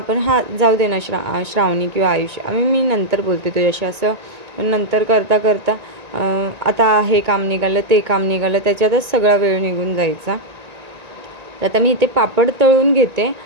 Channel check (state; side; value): late; left; 1.9 ms